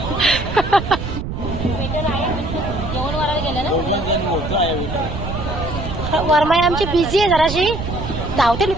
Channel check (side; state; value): right; noise; rumble, 6 dB below the sound